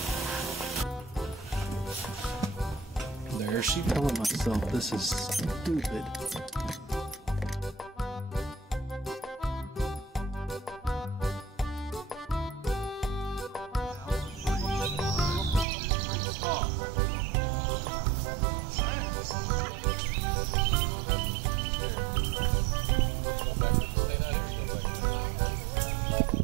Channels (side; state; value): left; drops out; at 15.7 s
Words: There she telling myself this is stupid.